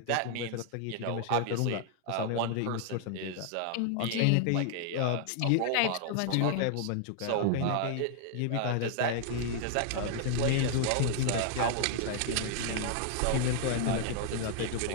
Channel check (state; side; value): different; both; correlation 0.00